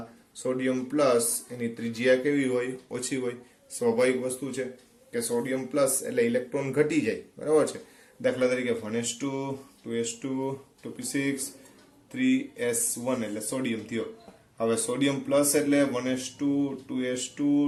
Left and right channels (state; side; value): identical; both; correlation 1.00